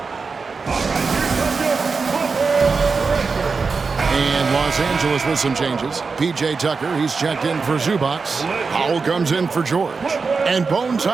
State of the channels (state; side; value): quieter; left; 4.7 dB